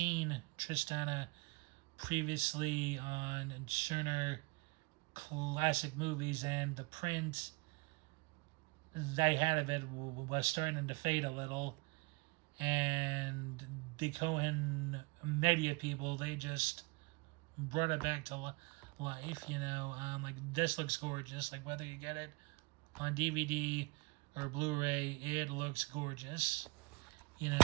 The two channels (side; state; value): left; quieter; 26.8 dB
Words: Tristana previously on Turner Classic Movies, and the print they had of it was starting to fade a little, and the Cohen media people, they just brought it back to life. Like, this looks gorgeous, like whether you get it on DVD or Blu-ray, it looks gorgeous,